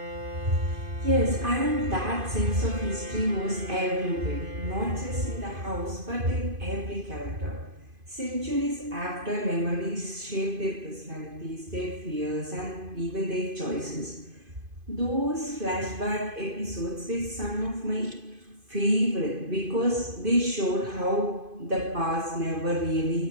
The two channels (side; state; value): left; late; 2.5 ms